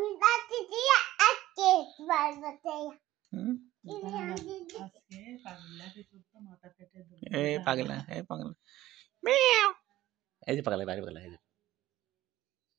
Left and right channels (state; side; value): quieter; left; 15.4 dB